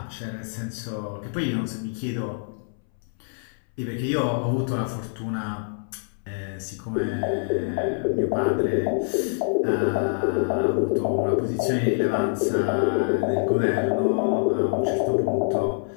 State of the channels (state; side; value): silent; right; 61 dB below the other